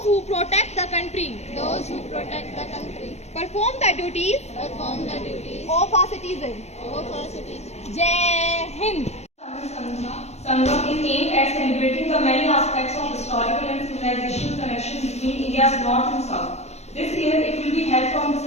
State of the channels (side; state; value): right; late; 0.32 ms